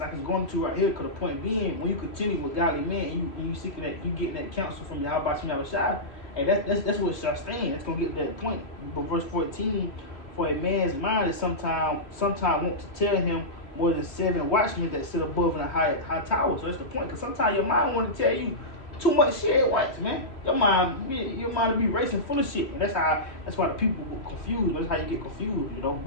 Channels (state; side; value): late; right; 3.0 ms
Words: going to right here. Because the point being, when you continue with godly men, and you seeking that, you getting that counsel from Yahweh Shai, and that's what shall stand. It's gonna get to that point. But verse 14, "For a man's mind is sometime want to tell him more than 7 watchmen that sit above in a high tower." So that's the point. Because sometimes your mind want to tell you too much shit at once, man. Your mind will be racing full of shit, and that's why the people get confused. That's how you get confused, you know,